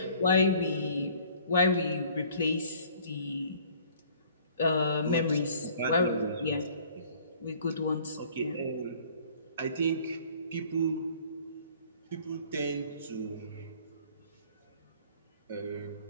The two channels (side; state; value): both; inverted; correlation -0.54